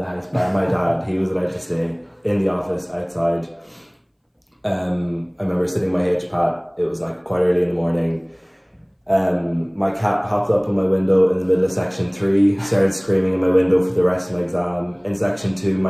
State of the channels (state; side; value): identical; both; correlation 1.00